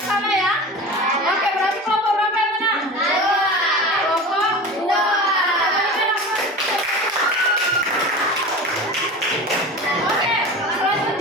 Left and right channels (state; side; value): normal; both; correlation 0.32